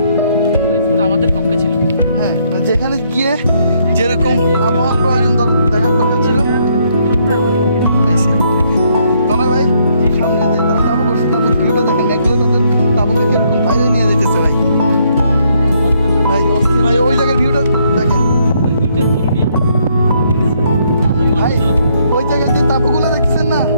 আমাদের পক্ষে ছিল, হ্যাঁ, যেখানে গিয়ে যেরকম আবহাওয়া প্রয়োজন দেখার দরকার ছিল পাইছি। তনয় ভাই, সামনে যে তারা তাবু করছে, তাবুর ভিউটা দেখেন, একগুলো তাদের তাবুকে কিরকম বাইরে নিয়ে যেতেছে ভাই। ভাই অস্থির ভাই, ওই জায়গার ভিউটা দেখেন ভাই। ওই জায়গায় যে তাবুগুলো দেখতেছেন না,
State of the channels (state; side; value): inverted; both; correlation -0.71